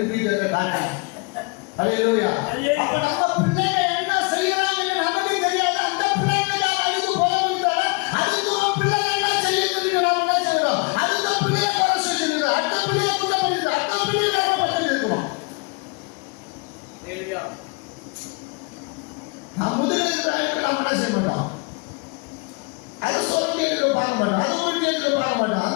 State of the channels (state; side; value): quieter; right; 29.6 dB